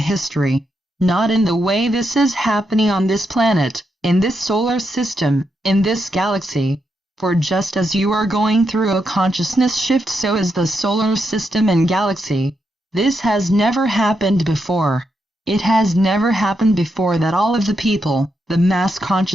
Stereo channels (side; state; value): both; normal; correlation 0.83